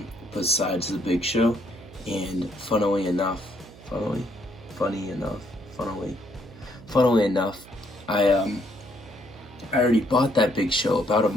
besides the Big Show, and funnily enough, I already bought that Big Show about a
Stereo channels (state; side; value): noise; right; hum, 20 dB below the sound